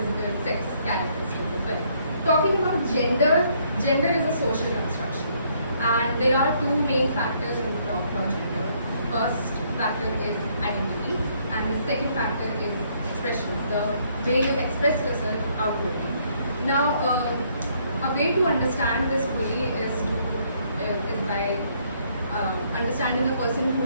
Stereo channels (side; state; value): both; inverted; correlation -0.68